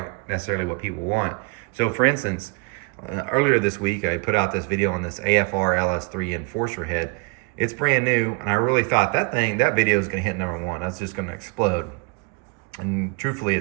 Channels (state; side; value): quieter; left; 32.3 dB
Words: necessarily what people want. So for instance, earlier this week, I put out this video on this AFR LS3 Enforcer head. It's brand new, and I really thought that video is going to hit #1. That's just going to explode. And truthfully,